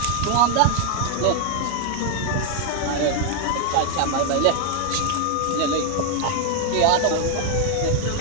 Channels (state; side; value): different; both; correlation 0.00